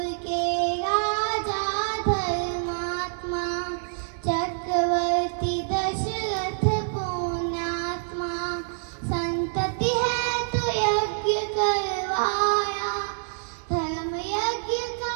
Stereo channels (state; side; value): silent; left; 61 dB below the other